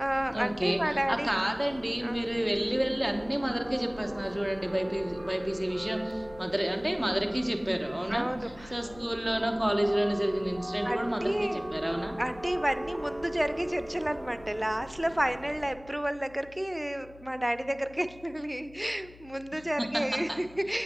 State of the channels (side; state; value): left; noise; hum, 22 dB below the sound